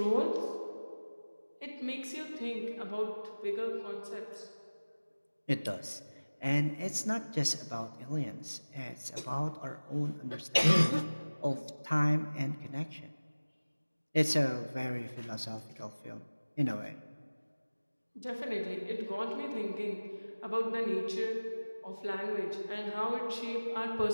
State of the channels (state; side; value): inverted; both; correlation -1.00